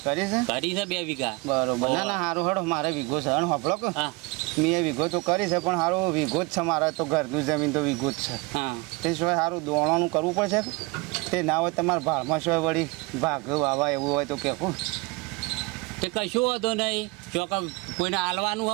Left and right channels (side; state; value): left; quieter; 26.2 dB